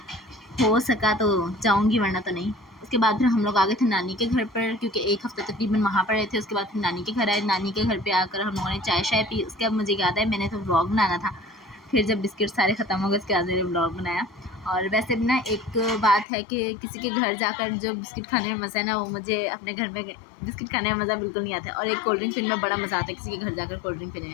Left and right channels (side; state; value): right; drops out; at 16.2 s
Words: हो सका तो जाऊंगी, वरना तो नहीं। उसके बाद फिर हम लोग आ गए थे नानी के घर पर, क्योंकि एक हफ्ता तकरीबन वहाँ पर रहे थे। उसके बाद फिर नानी के घर आए। नानी के घर पे आकर हम लोगों ने चाय शाय पी। उसके बाद मुझे याद है मैंने तो व्लॉग बनाना था, फिर जब बिस्किट सारे ख़त्म हो गए उसके बाद मैंने व्लॉग बनाया। और वैसे भी ना एक बात है कि किसी के घर जाकर जो बिस्किट खाने में मज़ा है ना, वो मुझे अपने घर में बिस्किट खाने में मज़ा बिल्कुल नहीं आता। और एक कोल्ड ड्रिंक पीने में बड़ा मज़ा आता है किसी के घर जाकर कोल्ड ड्रिंक पीने